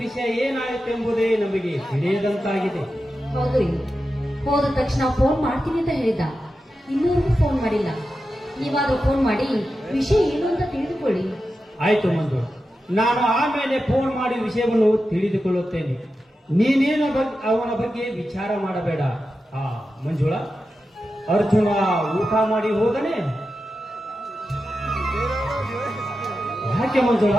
ವಿಷಯ ಏನಾಯಿತೆಂಬುದೇ ನಮಗೆ ತಿಳಿಯದಂತಾಗಿದೆ. ಹೌದು, ಹೋದ ತಕ್ಷಣ ಫೋನ್ ಮಾಡ್ತೀನಿ ಅಂತ ಹೇಳಿದ. ಇನ್ನೂವರೆಗೂ ಫೋನ್ ಮಾಡಿಲ್ಲ. ನೀವಾದ್ರೂ ಫೋನ್ ಮಾಡಿ ವಿಷಯ ಏನು ಅಂತ ತಿಳಿದುಕೊಳ್ಳಿ. ಆಯ್ತು ಮಂಜುಳ, ನಾನು ಆಮೇಲೆ ಫೋನ್ ಮಾಡಿ ವಿಷಯವನ್ನು ತಿಳಿದುಕೊಳ್ಳುತ್ತೇನೆ. ನೀನೇನ ಅವನ ಬಗ್ಗೆ ವಿಚಾರ ಮಾಡಬೇಡ. ಮಂಜುಳ, ಅರ್ಜುನ ಊಟ ಮಾಡಿ ಹೋದನೆ? ಯಾಕೆ ಮಂಜುಳ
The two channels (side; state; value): both; normal; correlation 0.91